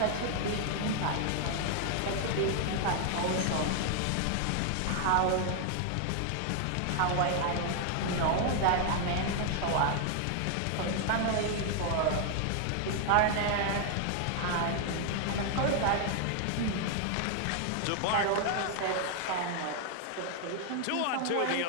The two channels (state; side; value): different; both; correlation 0.00